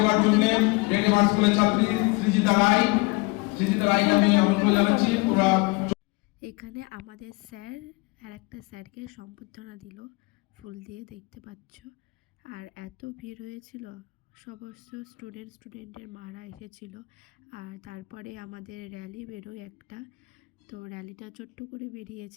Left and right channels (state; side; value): quieter; right; 26.9 dB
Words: জন্য রেড মার্চ স্কুলের ছাত্রী সৃজিতা রায়কে আমি আমন্ত্রণ জানাচ্ছি। তোমরা এখানে আমাদের স্যার আর একটা স্যারকে সম্বর্ধনা দিল ফুল দিয়ে, দেখতে পাচ্ছ। আর এত ভিড় হয়েছিল, সমস্ত স্টুডেন্টের মারা এসেছিল। আর তারপরে আমাদের র্যালি বেরোয় একটা, তো র্যালিটা ছোট্ট করে